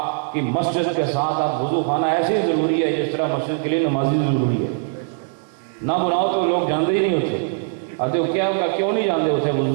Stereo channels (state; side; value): silent; left; 65 dB below the other